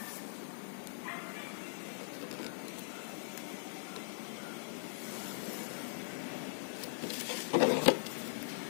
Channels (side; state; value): right; silent; digital silence